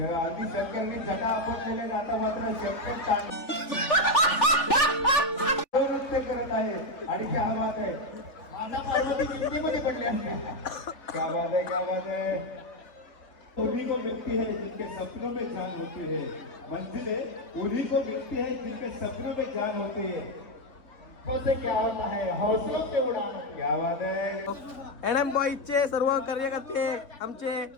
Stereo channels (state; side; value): late; right; 3.4 ms